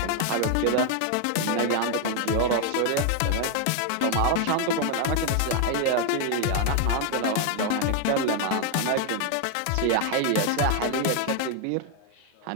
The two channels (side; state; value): both; different; correlation 0.00